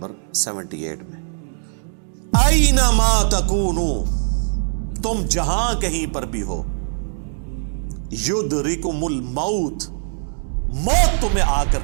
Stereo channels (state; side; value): silent; left; digital silence